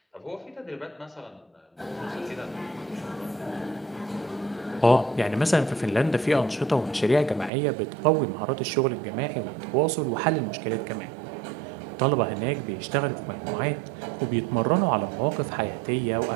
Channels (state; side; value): drops out; left; at 7.5 s